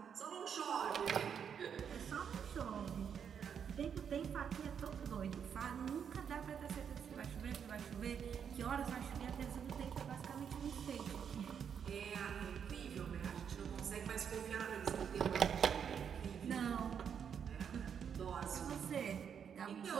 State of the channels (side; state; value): left; quieter; 7.6 dB